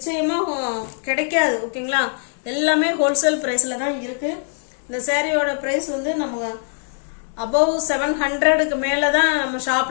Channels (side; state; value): right; silent; digital silence